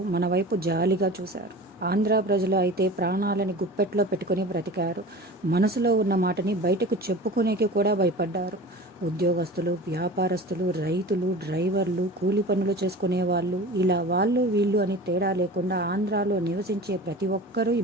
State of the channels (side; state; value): both; normal; correlation 0.36